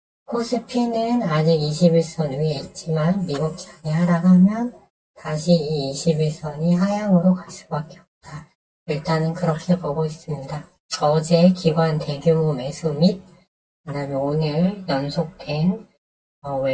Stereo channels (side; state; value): both; identical; correlation 1.00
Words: 코스피는 아직 21선 위에 있지만 미국장이 하락하면 다시 이 21선이 하향으로 갈 수밖에 없다. 일단은 그렇게 보고 있습니다. 어제 기관 대규모 매수 및 그다음에 오늘 연속된